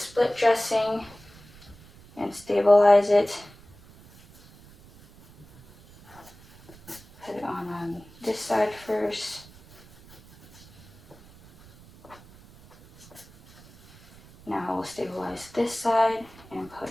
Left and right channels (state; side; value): noise; right; rumble, 23 dB below the sound